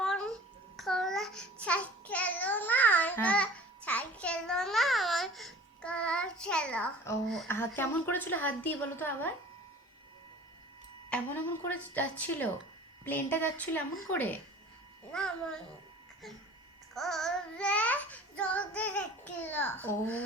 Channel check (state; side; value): normal; both; correlation 0.44